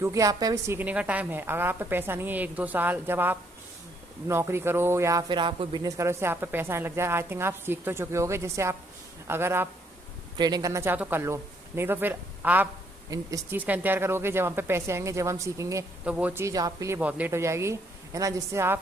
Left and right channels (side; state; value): both; normal; correlation 0.70